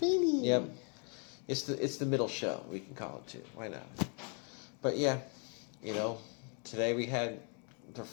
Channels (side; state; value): right; quieter; 38.0 dB